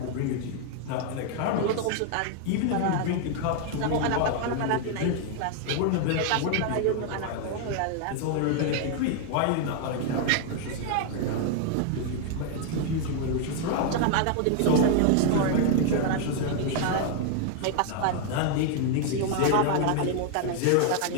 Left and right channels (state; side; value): different; both; correlation 0.00